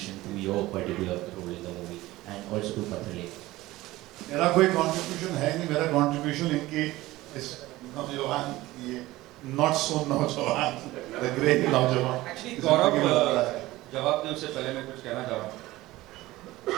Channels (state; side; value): quieter; left; 18.0 dB